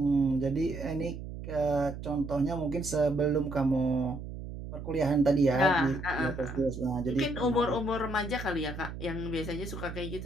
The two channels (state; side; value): noise; right; hum, 9 dB below the sound